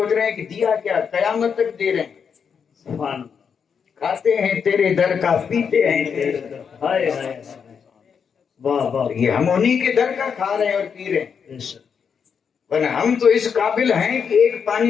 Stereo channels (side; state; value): right; quieter; 6.7 dB